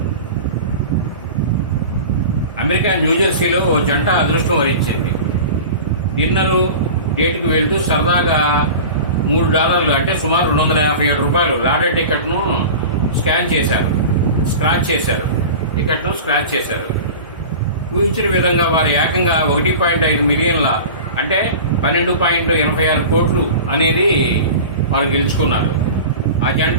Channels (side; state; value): both; inverted; correlation -0.34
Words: అమెరికా న్యూజెర్సీలో ఓ జంట అదృష్టం వరించింది. డిన్నరు డేట్కి వెళ్తూ సరదాగా $3 అంటే సుమారు $257 లాటరీ టికెట్ను స్క్రాచ్ చేశారు. ఊహించిన విధంగా వారు ఏకంగా 1.5 మిలియన్ల అంటే 12.86 కోట్లు అనేది వారు గెలుచుకున్నారు. ఆ